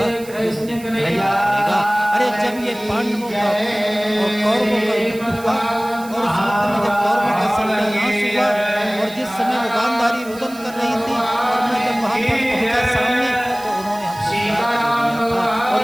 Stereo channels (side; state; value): right; noise; hiss, 19 dB below the sound